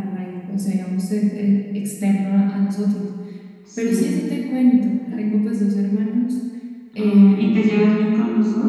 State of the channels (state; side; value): identical; both; correlation 1.00